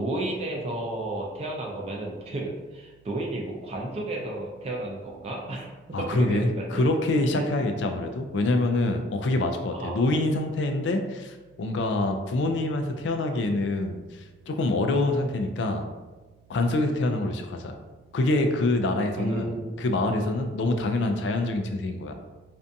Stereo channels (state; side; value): noise; right; hum, 30 dB below the sound